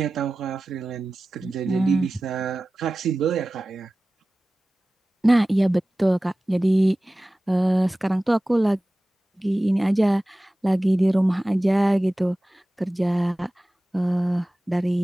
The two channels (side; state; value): both; normal; correlation 0.96